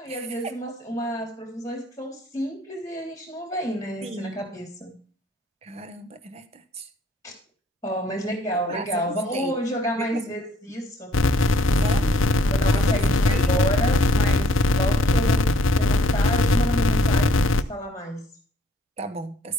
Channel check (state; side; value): normal; both; correlation 0.63